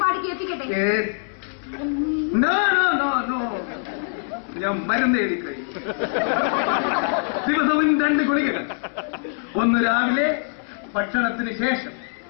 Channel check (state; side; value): silent; right; 63 dB below the other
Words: പാടി കേൾപ്പിക്കട്ടെ? ഞാൻ മരുന്ന് എഴുതി കഴിയും. ദിവസവും 2 ഗുളികകൾ. ഒന്ന് രാവിലെ ഭക്ഷണത്തിന് ശേഷം,